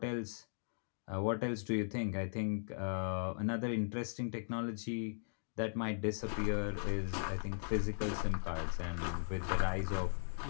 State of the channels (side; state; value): right; silent; digital silence